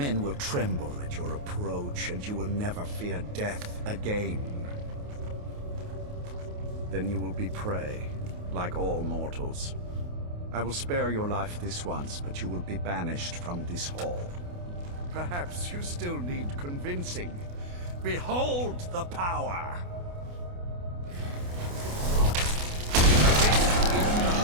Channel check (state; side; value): late; left; 28 ms